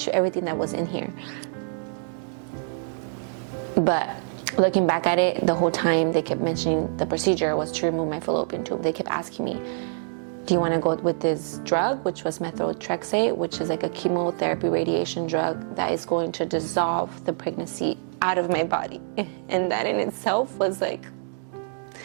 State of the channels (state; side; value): silent; left; digital silence